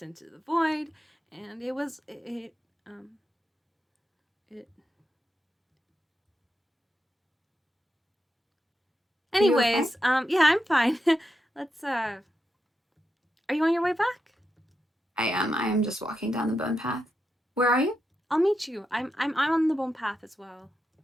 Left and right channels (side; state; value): both; normal; correlation 0.86